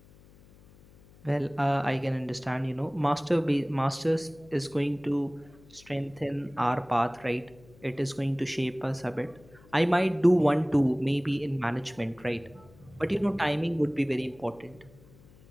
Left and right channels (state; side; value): noise; left; hum, 25 dB below the sound